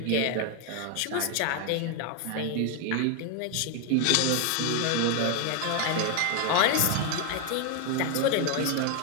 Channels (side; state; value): both; different; correlation 0.01